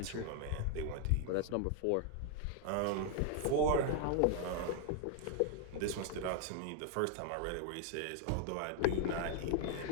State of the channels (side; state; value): both; different; correlation 0.00